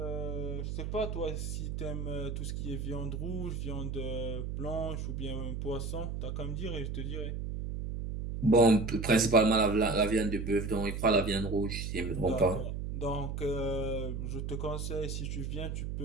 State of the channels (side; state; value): right; noise; hum, 4 dB below the sound